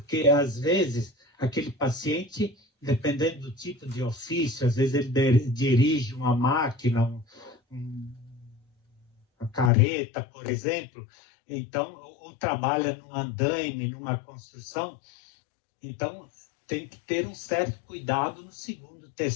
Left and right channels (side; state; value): right; drops out; at 9.7 s